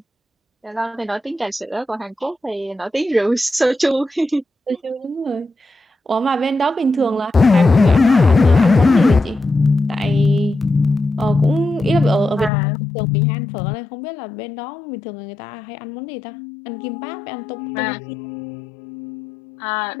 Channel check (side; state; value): right; drops out; at 12.5 s